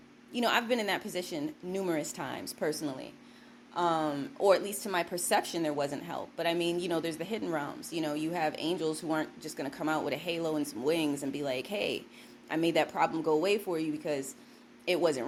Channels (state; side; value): identical; both; correlation 1.00